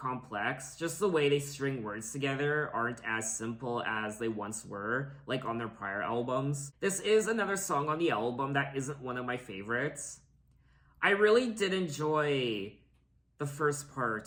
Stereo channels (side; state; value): both; identical; correlation 1.00